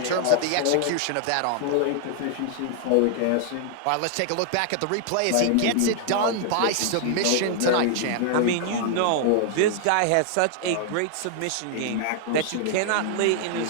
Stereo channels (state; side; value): different; both; correlation 0.00